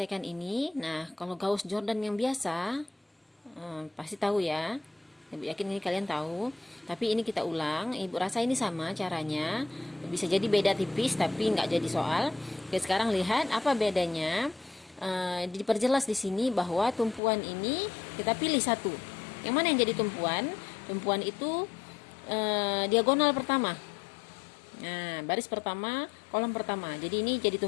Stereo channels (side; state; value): right; drops out; at 17.2 s